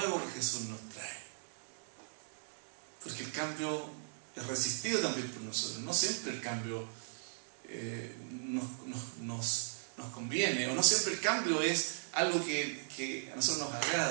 que Jesús nos trae. Porque el cambio es resistido también por nosotros. No siempre el cambio nos conviene, o no siempre el cambio es algo que a nosotros nos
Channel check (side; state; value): left; silent; digital silence